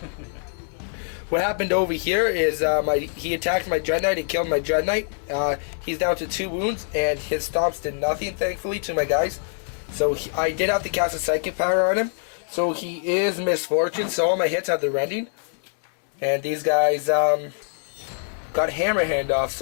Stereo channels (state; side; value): silent; right; 62 dB below the other